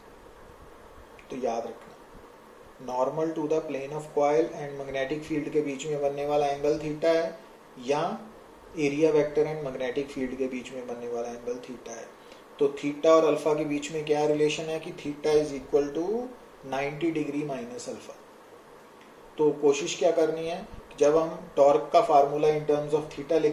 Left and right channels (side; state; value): both; identical; correlation 1.00